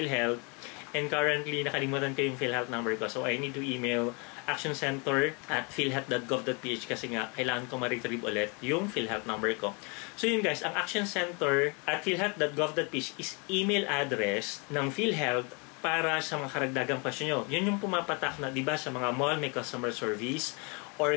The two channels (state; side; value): quieter; right; 32.6 dB